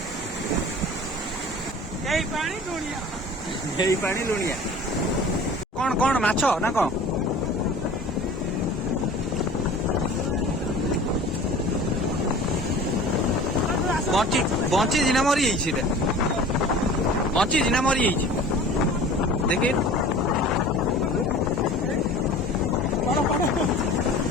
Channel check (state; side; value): normal; both; correlation 0.42